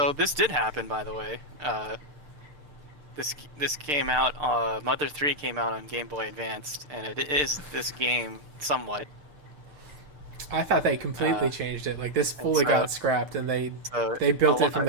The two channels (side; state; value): left; late; 6.7 ms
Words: this did happen, by the way. This came out. Mother 3 came out on Game Boy Advanced, and it is this game somewhat. I thought they completely changed it. Like this fully got scrapped, and they built it from